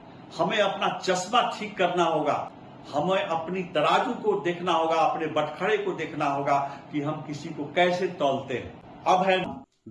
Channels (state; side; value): identical; both; correlation 1.00